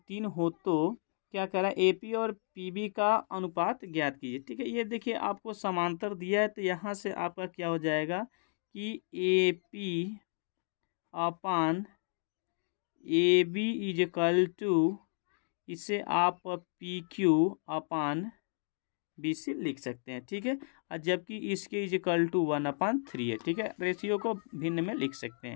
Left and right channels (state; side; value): silent; right; digital silence